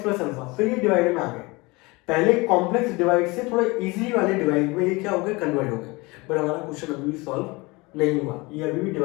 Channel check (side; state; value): right; quieter; 24.5 dB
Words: प्लस अल्फा, फिर ये डिवाइड में आ गए। पहले कॉम्प्लेक्स डिवाइड से थोड़ा इजीली वाले डिवाइड में ये क्या हो गया कन्वर्ट हो गया। बट हमारा क्वेश्चन अभी भी सॉल्व नहीं हुआ, ये अभी भी